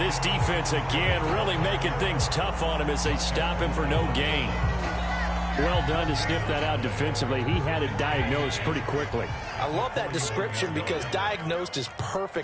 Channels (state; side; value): identical; both; correlation 1.00